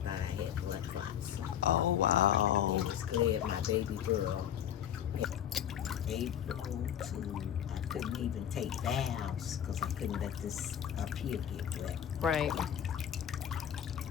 out I had blood clots. Oh, wow. They was glad my baby girl April to, I couldn't even take baths because I couldn't let this up here get wet. Right.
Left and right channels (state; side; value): quieter; right; 9.7 dB